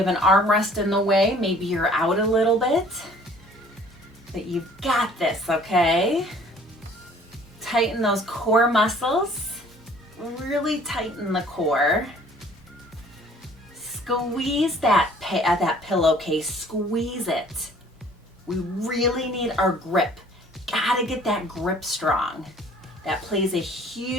an armrest in the way, maybe you're out a little bit. But you've got this, okay? Tighten those core muscles. Really tighten the core. Squeeze that pillowcase. Squeeze it. We really need our grip. Gotta get that grip strong. That plays a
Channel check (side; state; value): both; normal; correlation 0.54